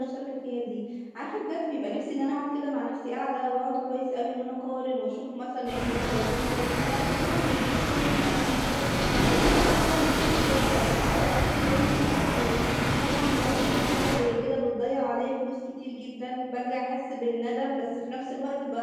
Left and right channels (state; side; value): identical; both; correlation 1.00